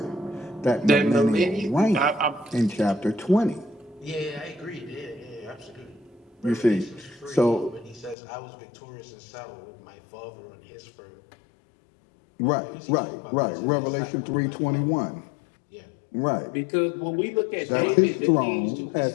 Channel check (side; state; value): right; drops out; at 8.2 s